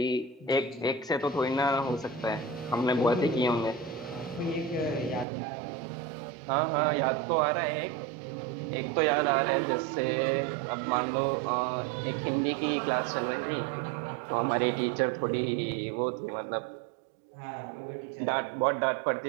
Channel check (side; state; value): left; drops out; at 5.2 s